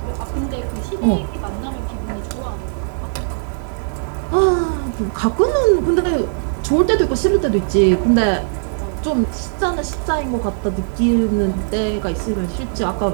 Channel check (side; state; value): left; silent; digital silence